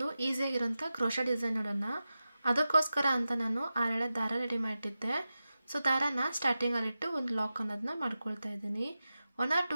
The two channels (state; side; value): inverted; both; correlation -0.93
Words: ಈಸಿಯಾಗಿರೋಂಥ ಕ್ರೋಶಾ ಡಿಸೈನ್ ನೋಡೋಣ. ಅದಕ್ಕೋಸ್ಕರ ಅಂತ ನಾನು 6 ದಾರ ರೆಡಿ ಮಾಡಿಟ್ಟಿದ್ದೆ. ಸೊ ದಾರನ ಸ್ಟಾರ್ಟಿಂಗಲ್ಲಿಟ್ಟು ಒಂದು ಲಾಕ್ ಅನ್ನೋದನ್ನ ಮಾಡ್ಕೊಳ್ತಾ ಇದ್ದೀನಿ. 1 or